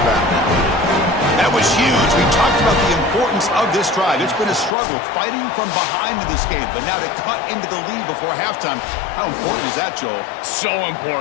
That was huge. We talked about the importance of this drive. It's been a struggle fighting from behind in this game, but now to cut into the lead before halftime. How important is that, Joel? So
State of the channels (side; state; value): right; drops out; at 4.7 s